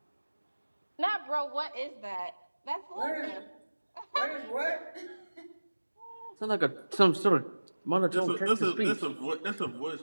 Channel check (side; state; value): both; inverted; correlation -1.00